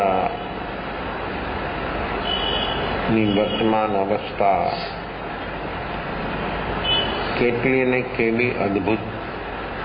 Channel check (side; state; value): both; identical; correlation 1.00